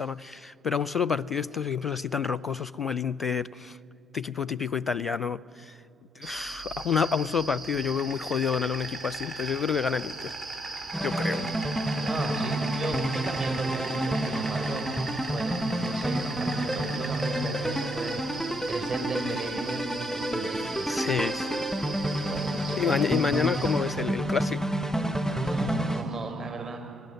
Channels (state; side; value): normal; both; correlation 0.73